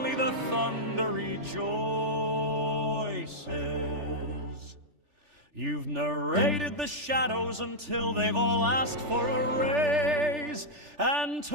the thunder rejoices. You've narrated the shadows until they've all asked for a raise, and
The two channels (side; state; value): left; late; 3.4 ms